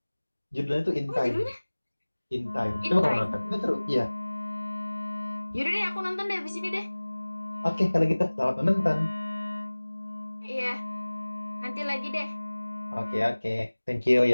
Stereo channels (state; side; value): inverted; both; correlation -1.00